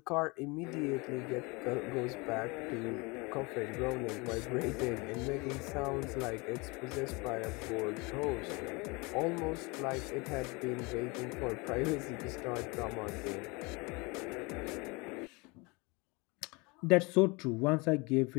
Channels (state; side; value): quieter; right; 26.9 dB